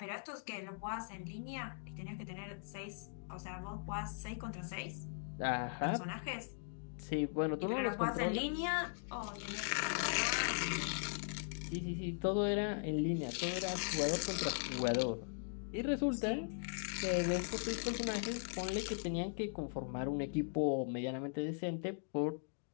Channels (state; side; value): silent; right; digital silence